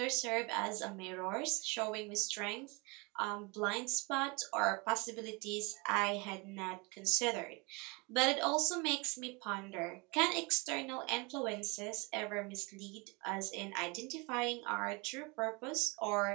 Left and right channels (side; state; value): left; quieter; 28.6 dB